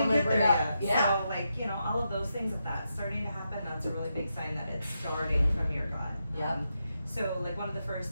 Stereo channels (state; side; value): inverted; both; correlation -0.85